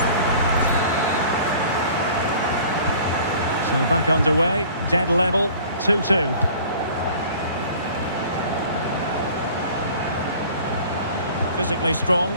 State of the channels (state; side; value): inverted; both; correlation -0.47